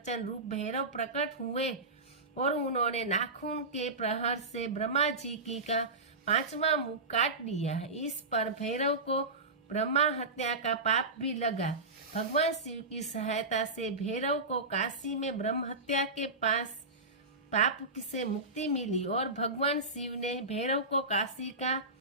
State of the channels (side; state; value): left; quieter; 3.2 dB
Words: रूप भैरव प्रकट हुए और उन्होंने नाखून के प्रहार से ब्रह्मा जी की का 5वां मुख काट दिया। इस पर भैरव को ब्रह्मा हत्या का पाप भी लगा। भगवान शिव की सहायता से भैरव को काशी में ब्रह्म हत्या के पाप से मुक्ति मिली और भगवान शिव ने भैरव को काशी का